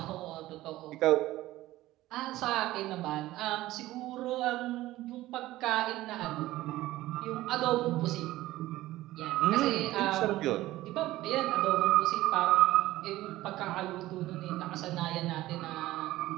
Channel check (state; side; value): quieter; left; 16.4 dB